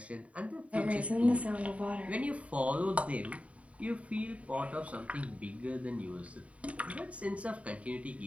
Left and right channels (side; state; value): left; late; 0.066 ms